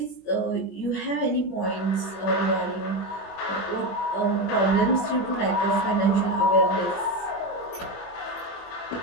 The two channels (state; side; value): late; right; 21 ms